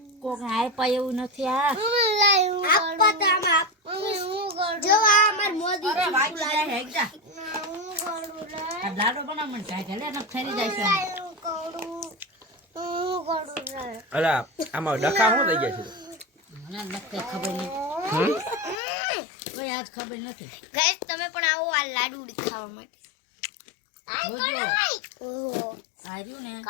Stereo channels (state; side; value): drops out; right; at 18.8 s